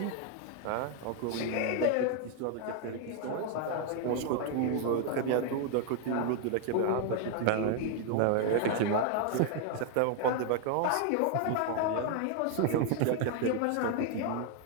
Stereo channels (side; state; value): both; different; correlation 0.00